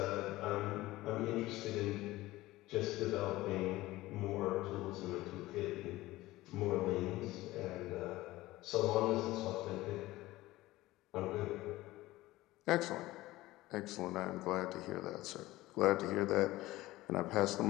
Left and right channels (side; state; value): right; quieter; 17.9 dB